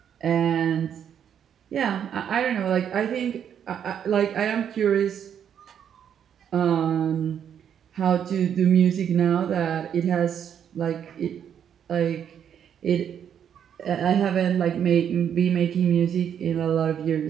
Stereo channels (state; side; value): quieter; left; 8.7 dB